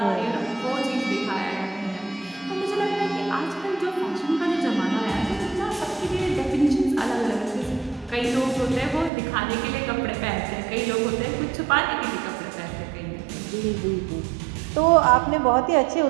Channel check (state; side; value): drops out; left; at 9.1 s